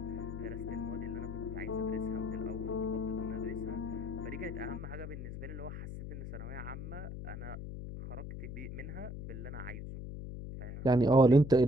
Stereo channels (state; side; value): noise; left; hum, 8 dB below the sound